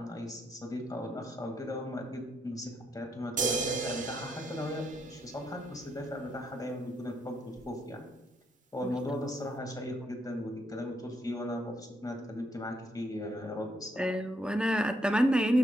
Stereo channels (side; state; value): both; normal; correlation 0.75